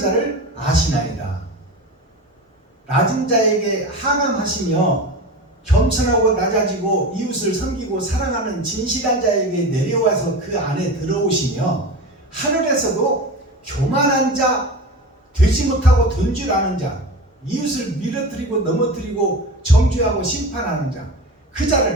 아시나이다. 낮은 자에게 하감하시며 겸손하고 낮아지고 이웃을 섬기고 사랑하는 진실한 자에게 내려와서 그 안에 들어오시며 하늘에서도 교만한 자, 되지 못하고 된 줄 아는 자, 이웃을 밀어뜨리고 넘어뜨리고 정죄하고 심판하는 자, 그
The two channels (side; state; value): both; normal; correlation 0.29